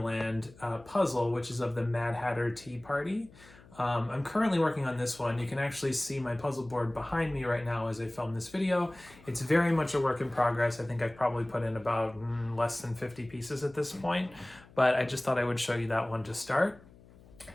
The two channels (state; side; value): noise; left; hum, 24 dB below the sound